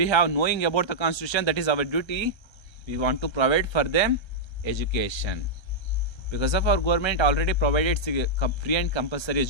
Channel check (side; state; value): right; late; 1.3 ms